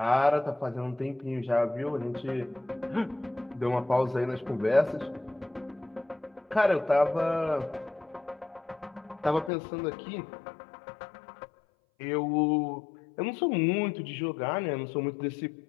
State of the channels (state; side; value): drops out; right; at 9.5 s